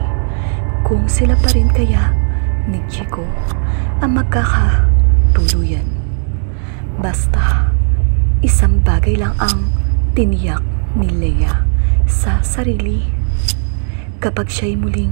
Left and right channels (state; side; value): silent; left; digital silence